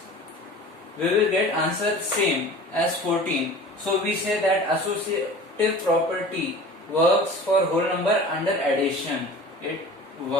we will get answer same as 14. So we say that associative property works for whole number under addition. It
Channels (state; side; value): normal; both; correlation 0.40